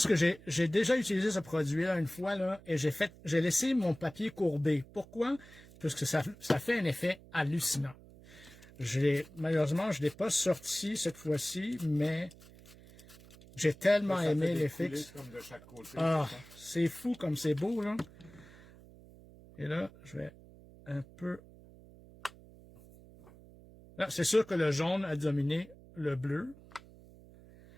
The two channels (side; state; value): right; noise; hum, 21 dB below the sound